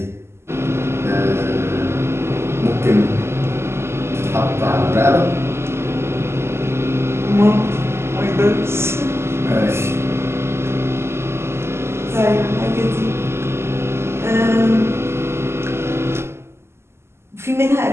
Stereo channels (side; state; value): left; late; 0.12 ms